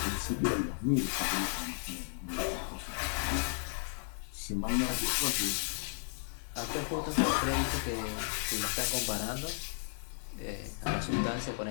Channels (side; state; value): right; silent; digital silence